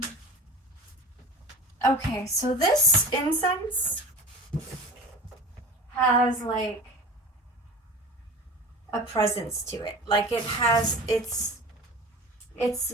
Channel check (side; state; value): both; normal; correlation 0.35